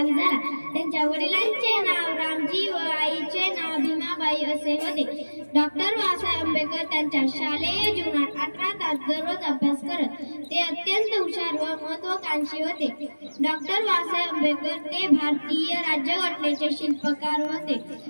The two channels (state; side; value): inverted; both; correlation -1.00